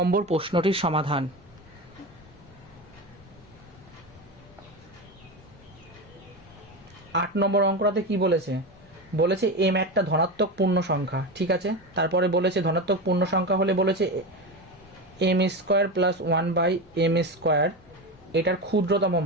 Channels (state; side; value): normal; both; correlation 0.21